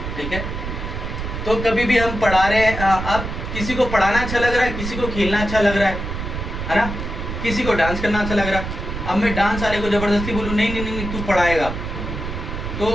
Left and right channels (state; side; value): noise; right; rumble, 6 dB below the sound